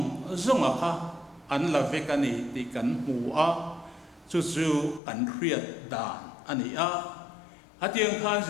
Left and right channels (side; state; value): right; drops out; at 5.0 s